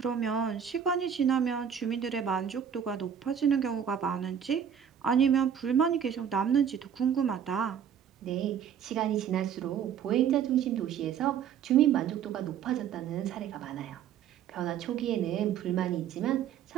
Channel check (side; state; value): left; quieter; 8.4 dB